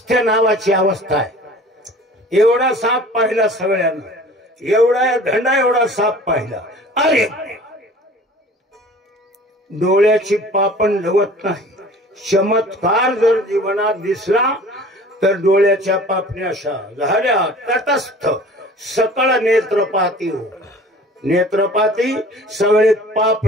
नावाची अवस्था आहे. एवढा साप पाहिला सगळ्यांना, एवढा धंडा एवढा साप पाहिला. अरे डोळ्याची पापण लवत नाही. चमत्कार जर जीवनात दिसला तर डोळ्याच्या पापण्या अशा झाल्या तटस्थ. सकळ नेत्रपाती हो. नेत्रपाती सगळे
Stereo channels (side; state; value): both; normal; correlation 0.45